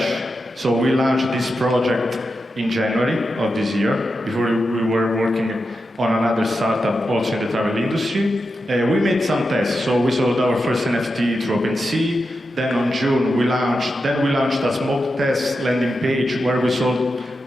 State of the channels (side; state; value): both; normal; correlation 0.89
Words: so we launched this project in January of this year. Before we were working on another startup also in the travel industry. We made some tests, so we sold our first NFT through OpenSea, then on June we launched a small test landing page where we sold